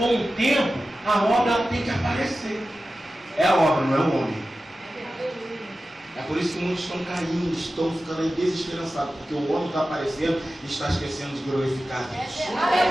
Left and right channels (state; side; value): normal; both; correlation 0.94